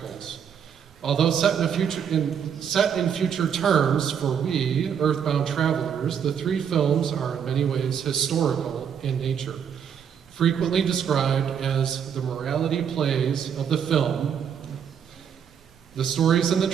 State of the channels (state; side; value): quieter; left; 7.9 dB